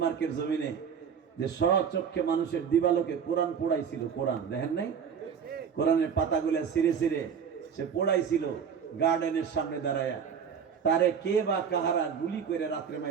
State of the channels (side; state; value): left; quieter; 7.2 dB